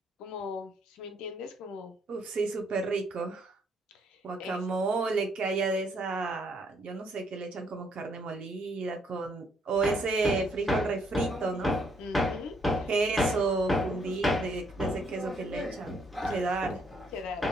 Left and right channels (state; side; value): normal; both; correlation 0.70